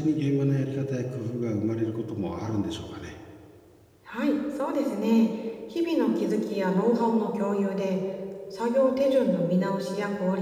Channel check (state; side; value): identical; both; correlation 1.00